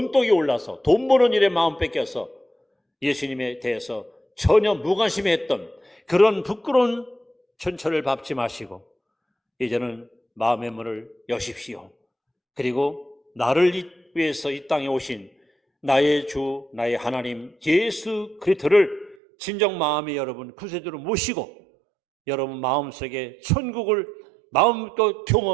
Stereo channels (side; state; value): left; drops out; at 19.2 s